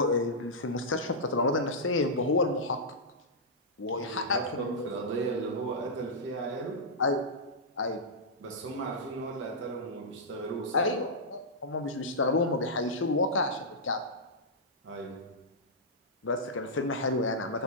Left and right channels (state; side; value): normal; both; correlation -0.12